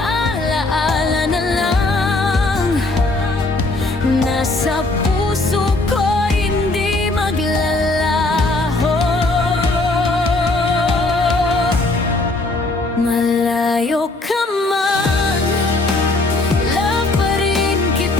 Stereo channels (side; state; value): right; quieter; 3.0 dB